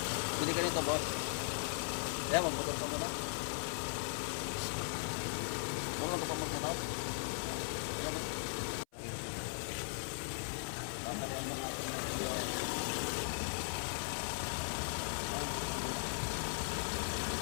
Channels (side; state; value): right; silent; 52 dB below the other